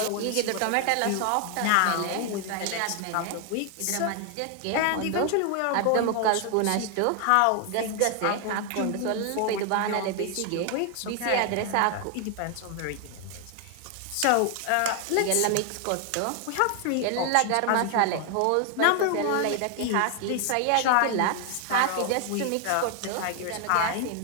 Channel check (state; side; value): different; both; correlation 0.00